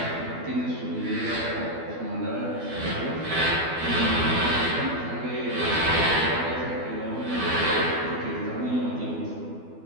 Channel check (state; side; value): late; left; 12 ms